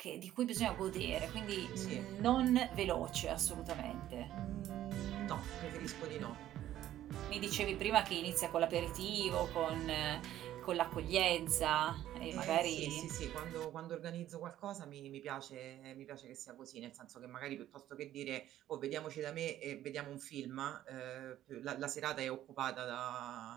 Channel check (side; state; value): left; quieter; 12.8 dB